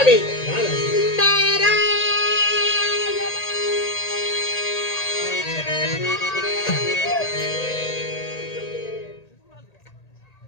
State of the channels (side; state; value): right; late; 1.8 ms